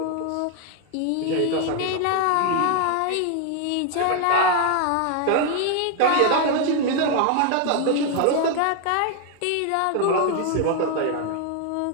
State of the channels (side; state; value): both; different; correlation 0.00